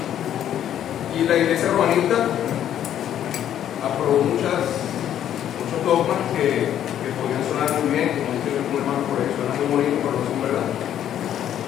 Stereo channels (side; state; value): right; quieter; 10.6 dB